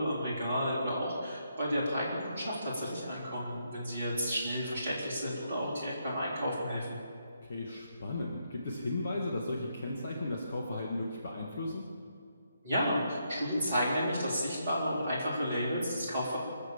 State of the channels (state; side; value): inverted; both; correlation -0.78